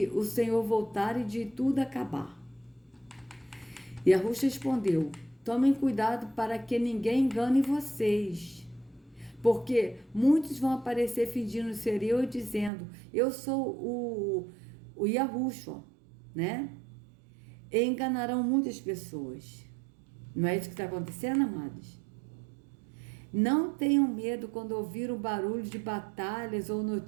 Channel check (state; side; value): drops out; left; at 12.7 s